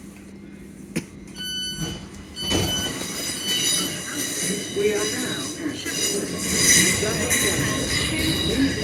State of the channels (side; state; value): both; identical; correlation 1.00